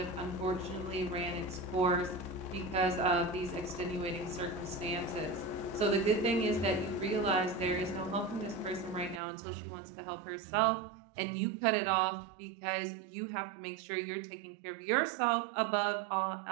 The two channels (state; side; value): drops out; left; at 9.2 s